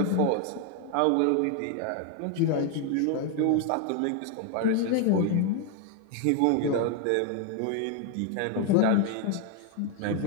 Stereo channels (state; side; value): different; both; correlation 0.01